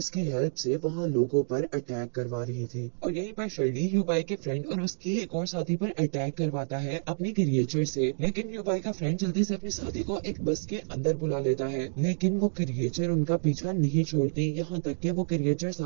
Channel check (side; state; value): left; silent; digital silence